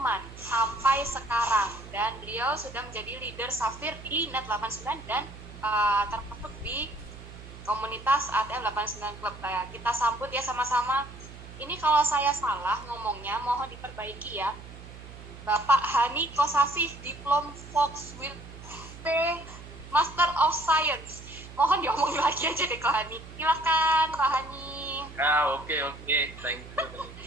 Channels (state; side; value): noise; right; hum, 15 dB below the sound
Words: sampai sekarang. Dan beliau sudah menjadi leader Safir di Net89 dan termasuk di komunitas ATM 89 Club. Kita sambut ya sama-sama. Ini kalau saya salah ngomongnya mohon diperbaiki ya. Bapak Hani Kosasih, Diplom Volkswirt Master of Science. mohon diomongin lagi aja deh Kohani. Silakan Kohani. Oke, thank you.